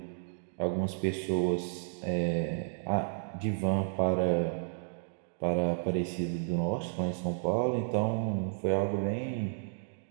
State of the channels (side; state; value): left; silent; digital silence